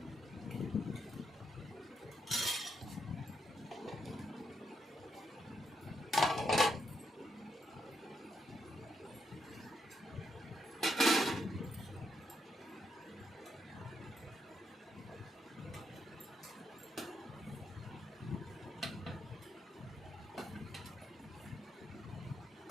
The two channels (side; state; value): both; normal; correlation 0.79